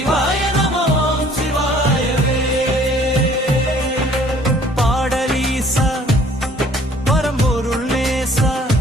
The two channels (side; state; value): both; normal; correlation 0.56